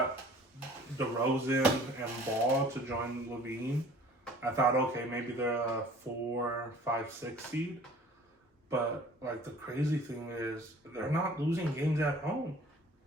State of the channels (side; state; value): both; normal; correlation 0.49